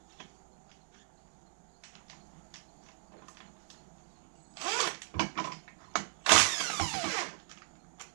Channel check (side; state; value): left; silent; digital silence